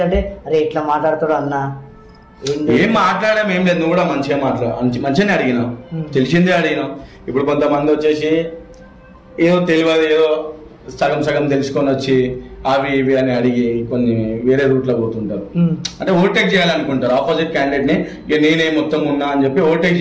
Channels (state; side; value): identical; both; correlation 1.00